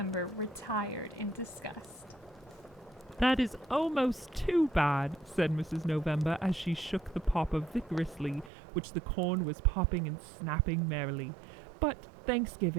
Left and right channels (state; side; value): drops out; left; at 8.5 s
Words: retired in disgust. That is almost too bad, said Mrs. November as she shook the popper vigorously, which the corn was popping and snapping merrily. But